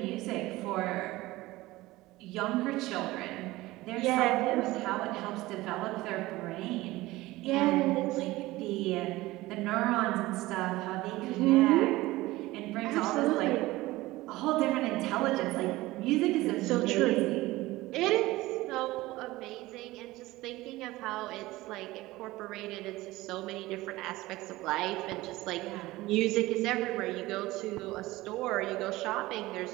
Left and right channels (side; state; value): left; quieter; 18.7 dB